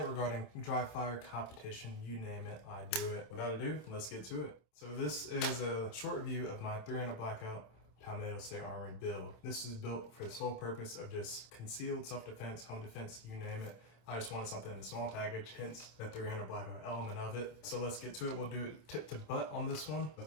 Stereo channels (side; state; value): right; late; 27 ms